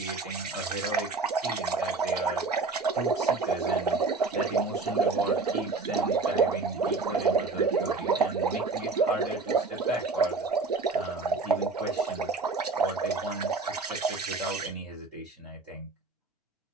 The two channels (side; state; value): left; quieter; 4.0 dB